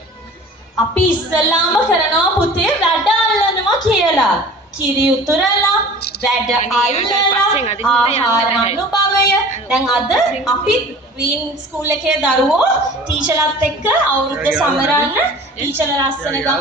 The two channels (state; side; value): normal; both; correlation 0.43